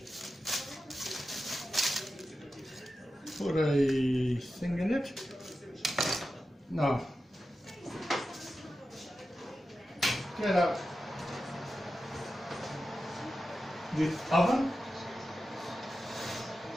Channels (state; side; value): normal; both; correlation 0.92